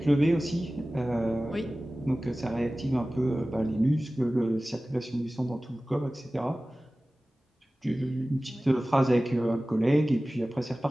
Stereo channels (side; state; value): both; normal; correlation 0.97